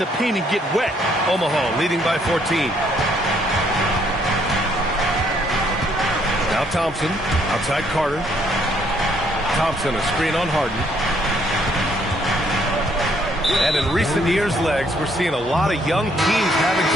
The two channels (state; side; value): normal; both; correlation 0.68